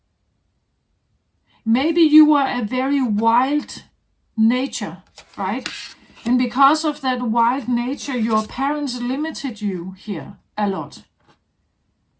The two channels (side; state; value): both; identical; correlation 1.00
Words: Maybe you were a very wild nature, right? And because of that wild nature, your parents limited you here a lot.